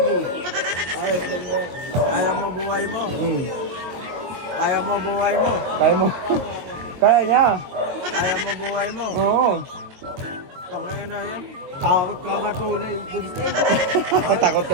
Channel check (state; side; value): late; left; 22 ms